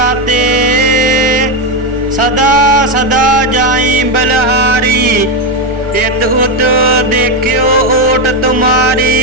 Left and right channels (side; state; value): left; late; 1.4 ms